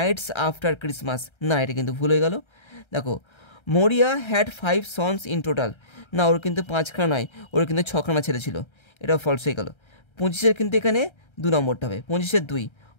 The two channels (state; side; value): late; right; 1.3 ms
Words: after Christmas, না এটা কিন্তু ভুল হয়ে গেল। দেখো মরিয়া হ্যাড 5 সন্স ইন টোটাল, না ওর কিন্তু 5খানা নয়, ওর কিন্তু 6খানা ছেলে ছিল, এটা ফলস হয়ে গেল। 25-এর কিন্তু এখানে 2 নম্বরটা হবে, 25-এর 2,